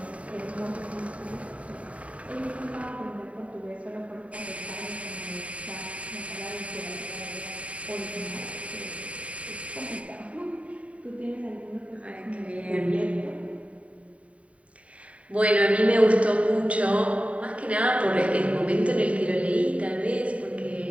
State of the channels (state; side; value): late; left; 0.066 ms